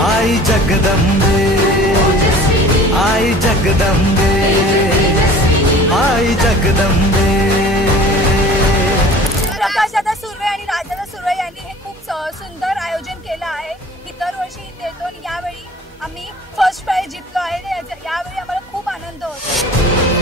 आई जगदंबे आई जगदंबे आई जगदंबे। प्रकाशदादा सुर्वे आणि राजदादा सुर्वे यांनी हे खूप सुंदर आयोजन केलं आहे। इतर वर्षी इथे येतो आणि यावेळी आम्ही फर्स्ट प्राइज जिंकलो आहे। यावेळी आम्हाला खूप आनंद होतो।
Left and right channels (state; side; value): normal; both; correlation 0.45